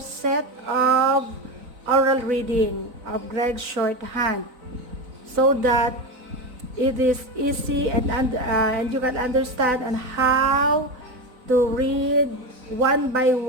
of oral reading of Gregg Shorthand so that it is easy and you can understand on how to read one by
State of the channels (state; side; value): late; left; 4.0 ms